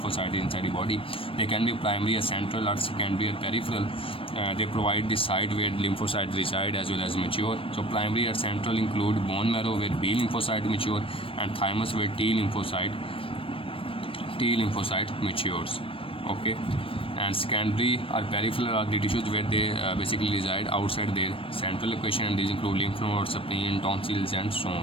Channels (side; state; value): right; late; 0.26 ms